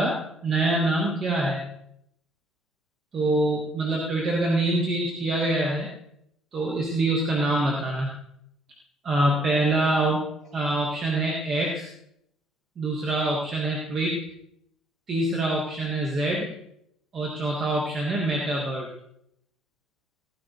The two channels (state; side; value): normal; both; correlation 0.66